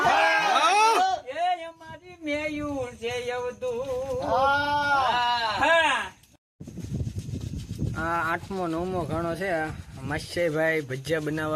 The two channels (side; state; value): both; identical; correlation 1.00